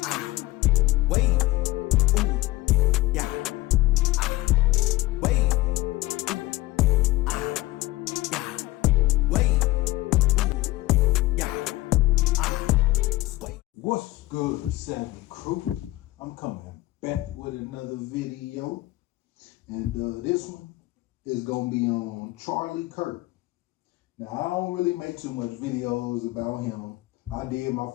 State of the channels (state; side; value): quieter; right; 18.6 dB